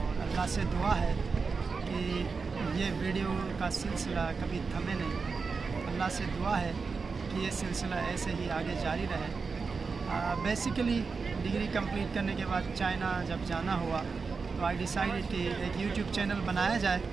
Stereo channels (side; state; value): left; quieter; 4.8 dB